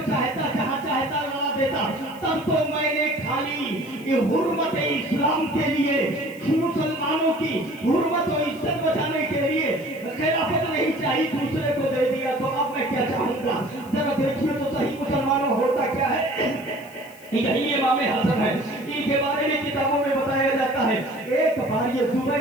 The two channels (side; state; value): left; noise; hiss, 23 dB below the sound